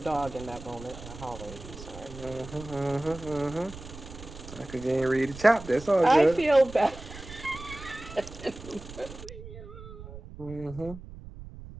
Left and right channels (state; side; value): noise; right; rumble, 14 dB below the sound